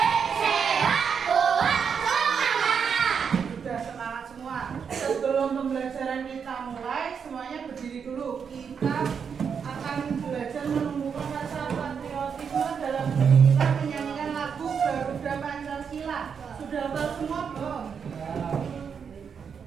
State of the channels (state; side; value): quieter; left; 6.7 dB